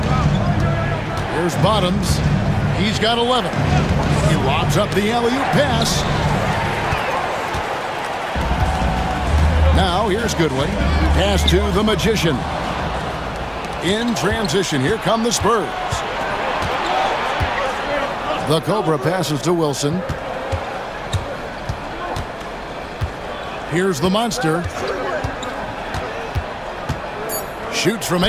Here's Bottoms. He's got 11. He lobs up the alley-oop pass. Now here's Goodwin. Pass to the Magician. In transition, here come the Spurs. The Cobra passes to Wilson. Here's the Monster. Shoots from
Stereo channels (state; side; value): identical; both; correlation 1.00